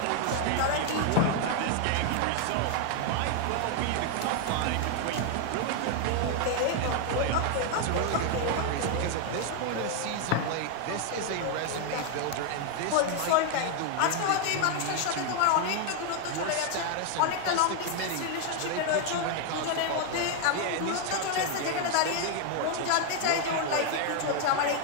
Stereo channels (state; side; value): different; both; correlation 0.00